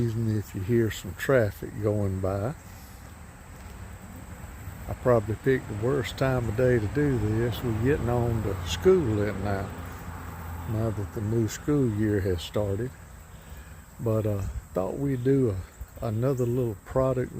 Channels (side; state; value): both; identical; correlation 1.00